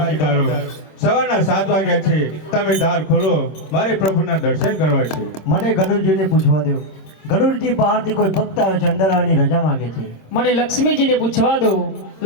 સવારના 7 વાગ્યા છે, તમે દ્વાર ખોલો, મારે પ્રભુના દર્શન કરવા છે. મને ગણુરજીને પૂછવા દો. ગણુરજી બહારથી કોઈ ભક્ત આવે છે, અંદર આવવાની રજા માંગે છે. મને લક્ષ્મીજીને પૂછવા દો.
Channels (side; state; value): right; late; 26 ms